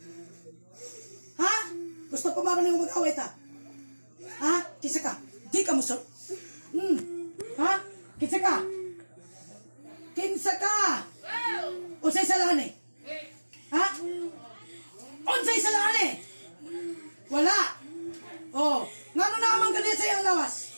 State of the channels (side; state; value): both; inverted; correlation -1.00